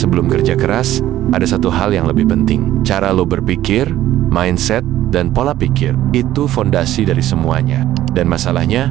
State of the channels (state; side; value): quieter; left; 13.6 dB